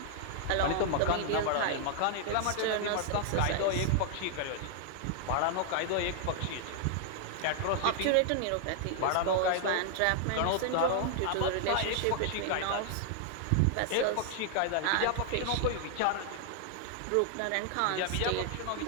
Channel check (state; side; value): different; both; correlation 0.00